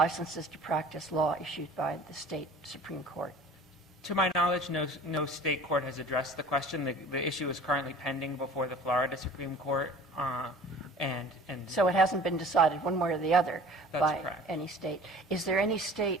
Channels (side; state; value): both; normal; correlation 0.45